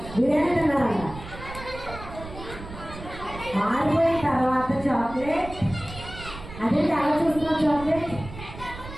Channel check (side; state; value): right; noise; rumble, 13 dB below the sound